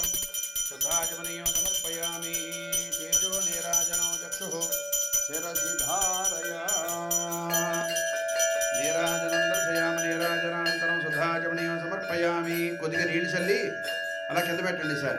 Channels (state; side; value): identical; both; correlation 1.00